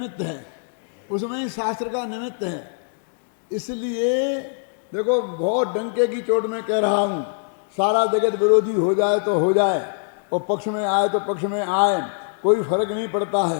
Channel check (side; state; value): right; silent; digital silence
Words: है, उसमें ही शास्त्र का निमित्त है। इसलिए देखो, बहुत डंके की चोट में कह रहा हूं, सारा जगत विरोधी हो जाए तो हो जाए, और पक्ष में आए तो पक्ष में आए, कोई फर्क नहीं पड़ता